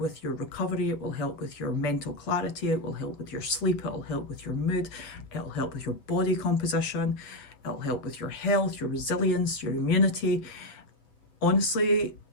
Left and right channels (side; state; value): right; late; 8.1 ms